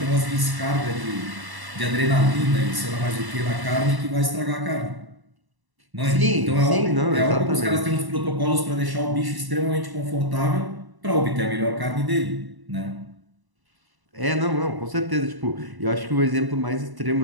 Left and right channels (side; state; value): left; late; 1.0 ms